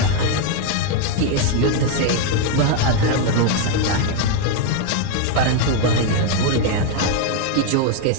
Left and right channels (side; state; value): both; different; correlation 0.01